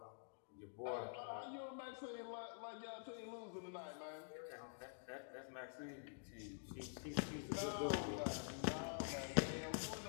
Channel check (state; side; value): silent; right; digital silence